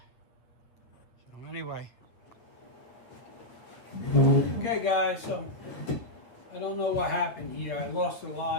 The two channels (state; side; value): late; right; 8.7 ms